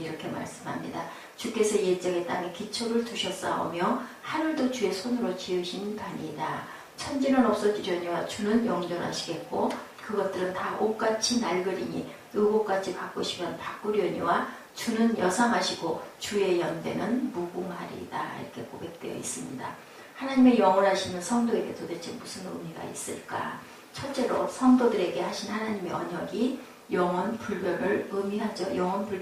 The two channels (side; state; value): both; identical; correlation 1.00